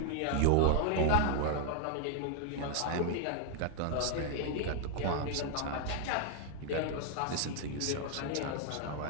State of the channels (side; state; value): both; different; correlation 0.00